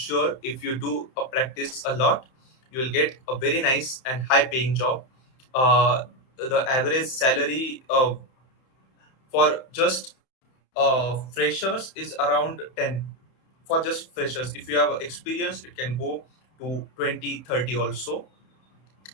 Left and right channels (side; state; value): right; late; 31 ms